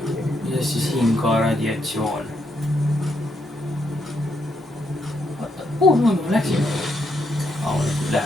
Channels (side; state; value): both; normal; correlation 0.78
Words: ja siis siin ka radiatsioon. Kuhu ma läksin? Ma